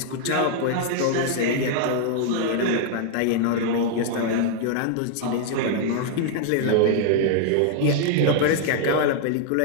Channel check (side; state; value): both; different; correlation -0.01